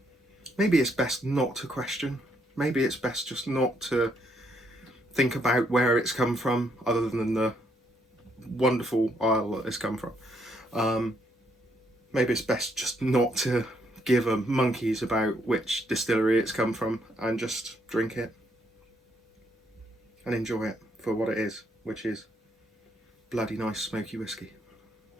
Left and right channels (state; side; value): normal; both; correlation 0.73